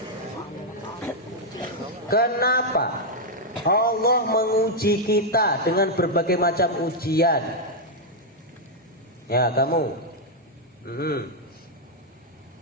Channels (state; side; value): normal; both; correlation -0.02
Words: Kenapa Allah menguji kita dengan berbagai macam ujian? Ya, kamu.